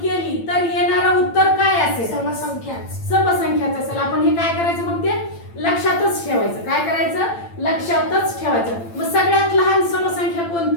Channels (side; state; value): right; late; 8.8 ms